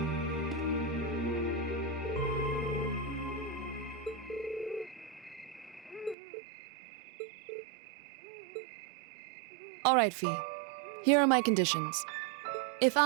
All right, Fee. Here are my conditions. If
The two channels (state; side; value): drops out; left; at 6.2 s